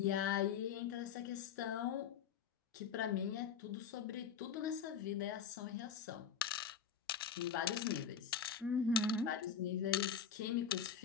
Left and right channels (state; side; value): quieter; right; 7.4 dB